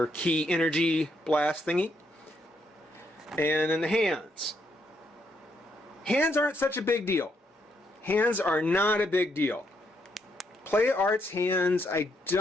key energy blast thingy, and then the hands. Hands aren't such a big deal. Hands are not a big deal. Play Arts hands, I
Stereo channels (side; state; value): both; normal; correlation 0.76